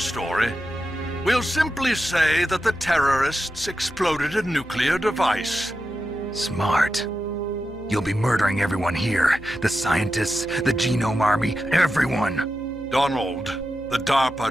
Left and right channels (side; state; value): left; noise; hum, 17 dB below the sound